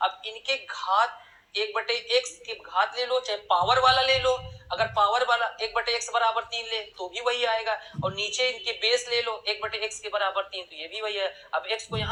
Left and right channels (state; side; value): identical; both; correlation 1.00